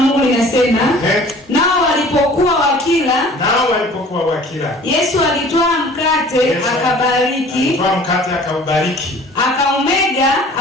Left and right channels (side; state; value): both; normal; correlation 0.48